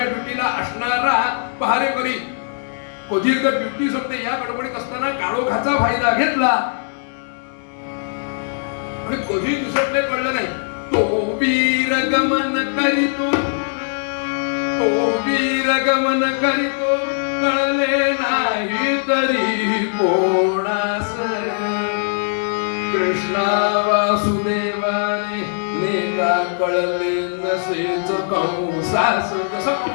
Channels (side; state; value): right; silent; digital silence